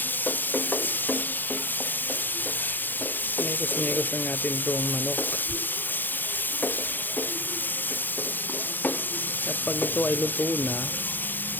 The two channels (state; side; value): late; right; 0.090 ms